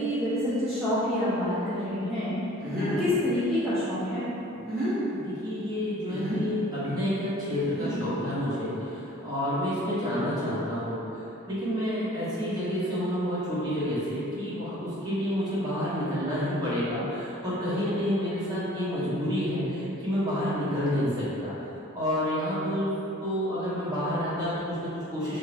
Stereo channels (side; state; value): both; normal; correlation 0.51